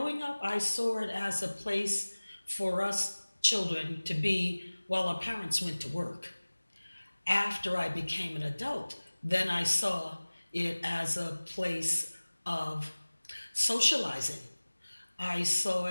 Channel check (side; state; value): both; inverted; correlation -1.00